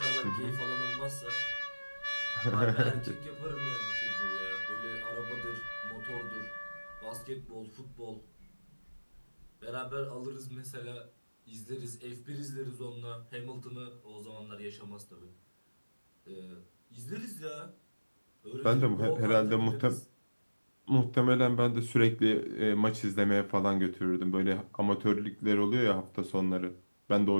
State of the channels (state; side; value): inverted; both; correlation -1.00